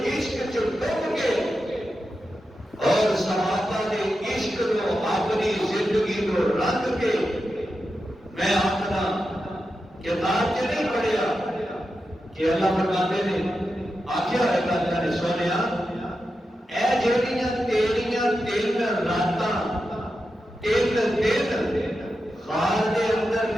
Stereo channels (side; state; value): both; normal; correlation 0.89